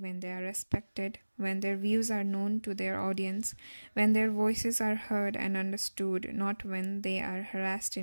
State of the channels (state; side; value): inverted; both; correlation -1.00